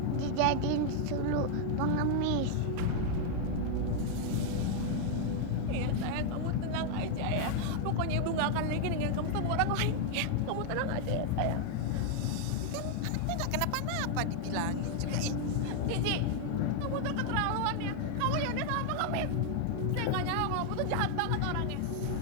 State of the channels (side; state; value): both; different; correlation 0.00